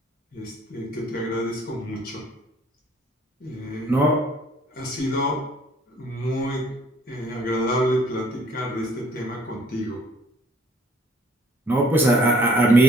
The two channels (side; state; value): both; normal; correlation 0.58